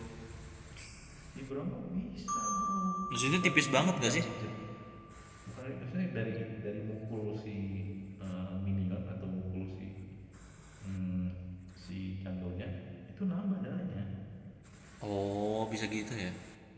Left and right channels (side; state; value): both; identical; correlation 1.00